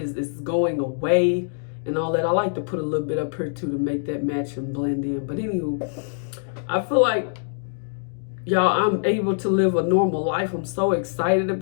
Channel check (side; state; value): right; silent; digital silence